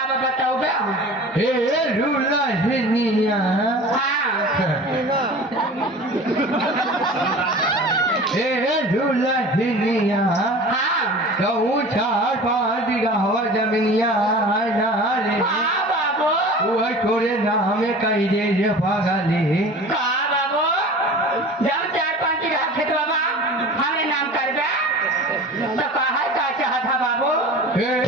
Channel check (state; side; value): normal; both; correlation 0.39